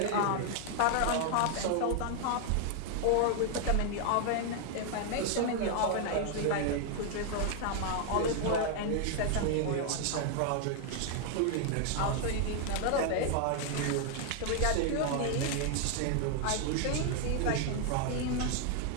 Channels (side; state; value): both; different; correlation 0.00